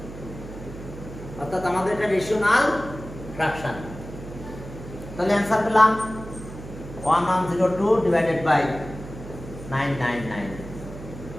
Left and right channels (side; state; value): right; noise; hum, 13 dB below the sound